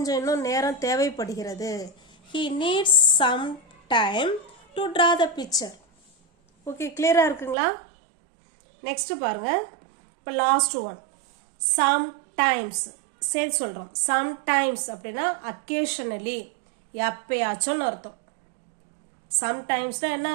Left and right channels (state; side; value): drops out; left; at 7.6 s